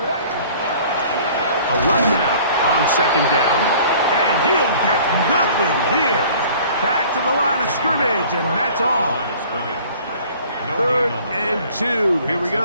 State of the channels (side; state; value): both; inverted; correlation -0.50